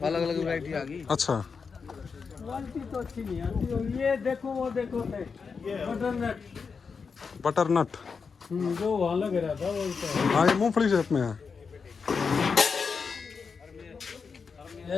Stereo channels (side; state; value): right; quieter; 5.4 dB